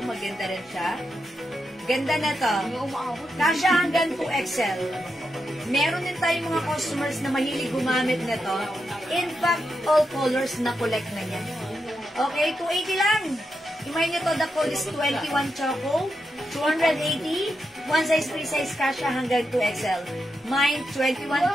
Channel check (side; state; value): both; normal; correlation 0.86